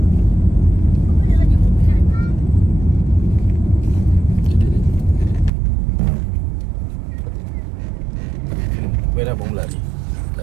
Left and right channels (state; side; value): drops out; left; at 5.5 s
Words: Merah belum lari.